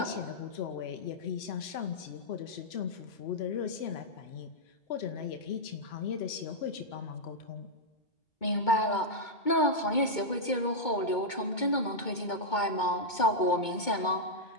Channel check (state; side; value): late; right; 2.2 ms